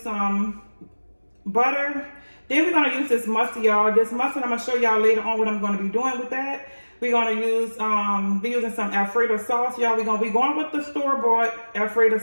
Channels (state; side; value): inverted; both; correlation -1.00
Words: butter. Then we're going to use this mustard, y'all. This mustard, I'm going to show y'all later on what I'm going to be doing with that. We're going to use, be using some alfredo sauce, y'all. We're going to be going with the store-bought alfredo